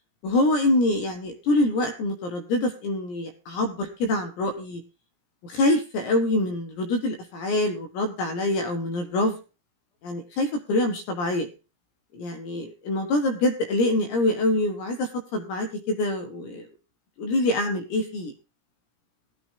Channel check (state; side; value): late; right; 17 ms